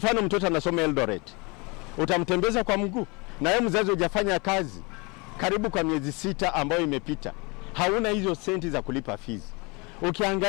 mtoto anasoma Eldoret. Utamtembeza kwa mguu. Na wewe mzazi hujafanya kazi karibu kwa miezi 6 ambayo imepita. Hauna hizo senti za kulipa fees.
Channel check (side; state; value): right; quieter; 28.4 dB